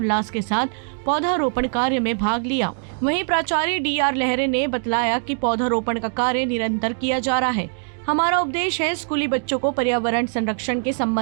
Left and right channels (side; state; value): left; silent; digital silence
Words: के साथ पौधारोपण कार्य में भाग लिया। वहीं प्राचार्य DR लहरे ने बतलाया कि पौधारोपण का कार्य निरंतर किया जा रहा है। हमारा उद्देश्य है स्कूली बच्चों को पर्यावरण संरक्षण के